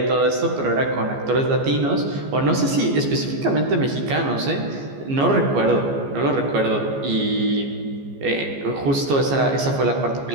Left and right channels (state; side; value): late; left; 14 ms